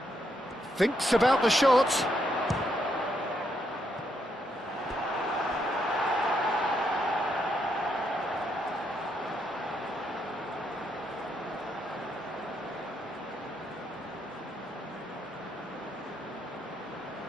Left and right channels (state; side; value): normal; both; correlation 0.77